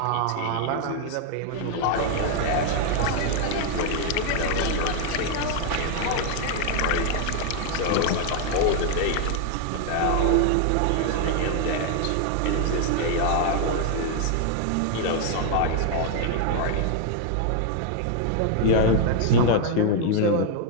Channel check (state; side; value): different; both; correlation 0.00